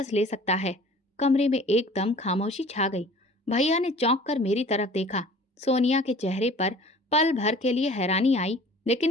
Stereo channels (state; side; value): normal; both; correlation 0.47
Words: ले सकता है। कमरे में एकदम खामोशी छा गई। भैया ने चौंक कर मेरी तरफ देखा। सोनिया के चेहरे पर पल भर के लिए हैरानी आई,